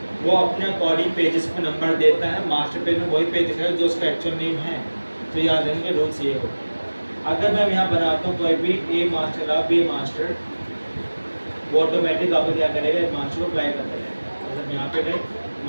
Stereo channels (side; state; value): both; inverted; correlation -1.00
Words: वो अपने अकॉर्डिंग पेजेस पे नंबर देता है। मास्टर पेज में वही पेज दिखाएगा जो उसका एक्चुअल नेम है। तो याद रखेंगे रूल्स ये हो। अगर मैं यहाँ बनाता हूँ कोई भी ए मास्टर आप बी मास्टर, वो ऑटोमेटिक आपको क्या करेगा, मास्टर को अप्लाई करता रहेगा। मतलब यहाँ पे गए